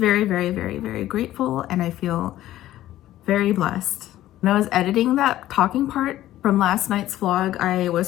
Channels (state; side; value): quieter; right; 14.1 dB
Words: very, very, very grateful, and I feel very blessed. When I was editing that talking part from last night's vlog, I